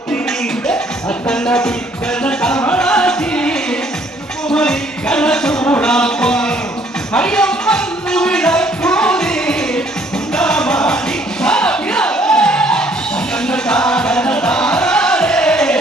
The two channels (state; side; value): normal; both; correlation 0.62